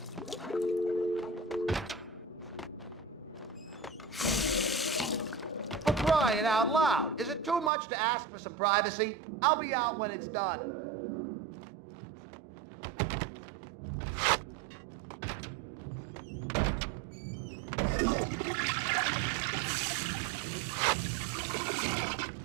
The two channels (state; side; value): drops out; left; at 7.7 s